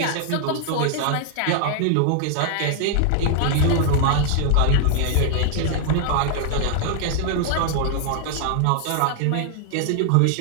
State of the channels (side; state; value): both; different; correlation 0.00